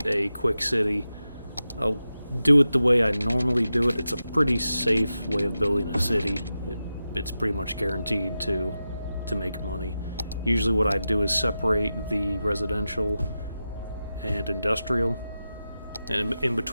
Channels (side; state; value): both; inverted; correlation -0.91